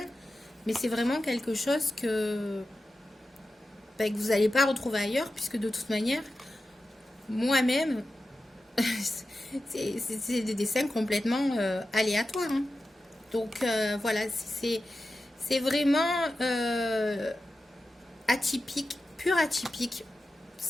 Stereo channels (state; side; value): normal; both; correlation 0.92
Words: mais c'est vraiment quelque chose que vous n'allez pas retrouver ailleurs, puisque de toute manière, moi-même, c'est des dessins complètement aléatoires. Hein. Donc voilà, c'est vraiment atypique, pur atypique.